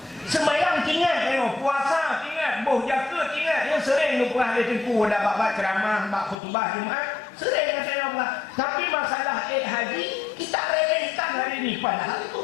Sembahyang ingat, puasa ingat, bau jakut ingat. Yang sering lupa ada tempuh dah bab ceramah, bab khutbah Jumaat. Sering kata yang Allah. Tapi masalah haji kita remehkan hari ini padahal itu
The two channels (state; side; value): drops out; right; at 6.4 s